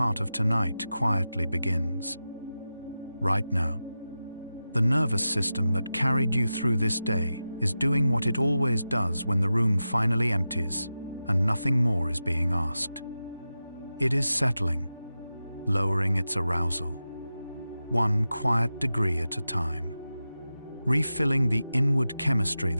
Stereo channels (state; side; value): inverted; both; correlation -0.93